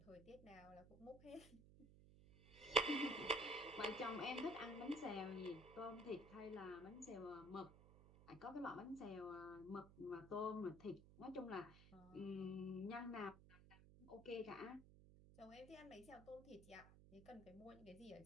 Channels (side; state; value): right; noise; hum, 18 dB below the sound